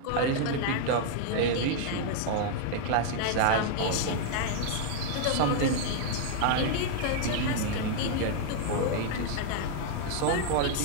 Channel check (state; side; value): different; both; correlation 0.00